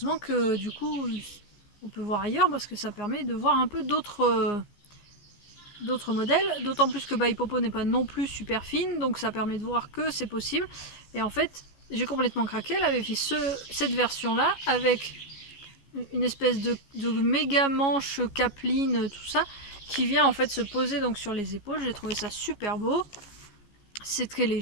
que du coup on peut voir ailleurs parce que ça permet de voir un peu d'autres modèles, d'autant plus que By Popo n'est pas non plus super fine, donc ça permet de voir que c'est possible. Et en fait, j'ai complètement craqué, elle avait fait cette version-là avec une espèce de méga manche capeline, tout ça, qui vient en fait se poser donc sur les épaules. J'ai trouvé ça super beau. C'est très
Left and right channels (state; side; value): late; right; 14 ms